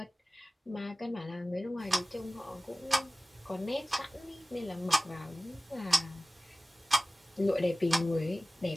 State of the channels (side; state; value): both; normal; correlation 0.96